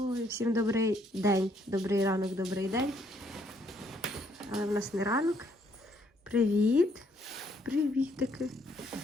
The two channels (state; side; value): normal; both; correlation 0.69